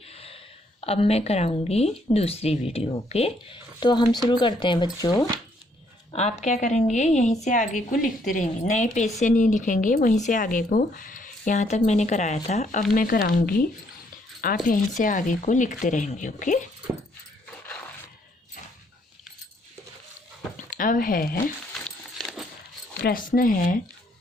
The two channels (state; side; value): normal; both; correlation 0.69